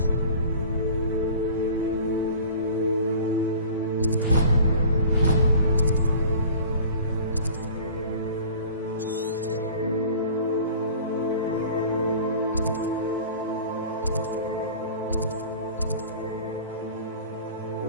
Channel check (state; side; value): inverted; both; correlation -0.43